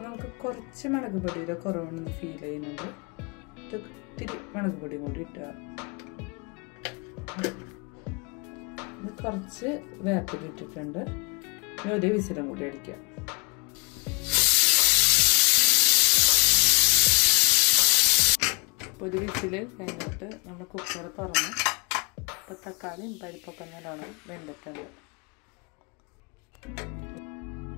നമുക്ക് കുറച്ച് മുളക് പൊടിയുടെ കുറവാണെന്ന് ഫീൽ ചെയ്യുന്നുണ്ട്. ഇത്തിരി മുളക് പൊടിയും കൂടി ഇട്ടുക. കുറച്ച് വേപ്പില ഇട്ടിട്ടുണ്ട്. ഇനി ഒരു വിസിലും കൂടി അടിക്കാം. ഒരു വിസിൽ കഴിഞ്ഞിട്ട് നമ്മൾ കുക്കർ തുറന്ന് ഇപ്പൊ തക്കാളിയും പരിപ്പൊക്കെ നല്ലോണം വെന്തിട്ടുണ്ട്.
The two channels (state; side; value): quieter; right; 30.6 dB